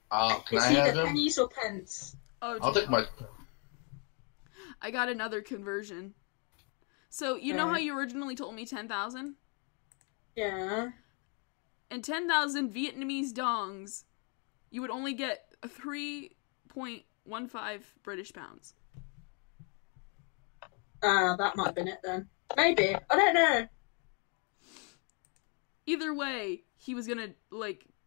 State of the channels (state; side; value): quieter; right; 36.8 dB